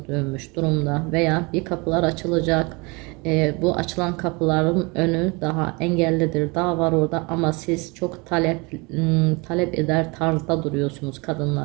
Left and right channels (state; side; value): quieter; left; 27.7 dB